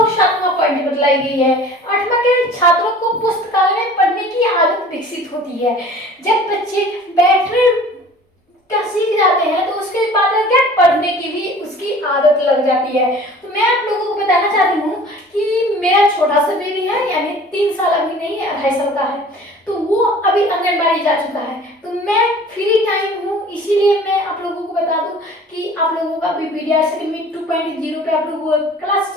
7वां पॉइंट बतलाई गई है। 8वां क्या है, छात्रों को पुस्तकालय में पढ़ने की आदत विकसित होती है। जब बच्चे बैठने का सीख जाते हैं तो उसके बाद क्या, पढ़ने की भी उसकी आदत लग जाती है। तो मैं आप लोगों को बताना चाहती हूँ कि मेरा छोटा सा बेबी है, यानी 3 साल अभी नहीं है, 2.5 साल का है, तो वो अभी आंगनबाड़ी जा चुका है। तो मैं फ्री टाइम हूँ, इसीलिए मैं आप लोगों को बता दूं कि आप लोगों का अभी बीडीआरसी अकेडमी 2.0 पे आप लोगों का क्लास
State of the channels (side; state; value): both; normal; correlation 0.46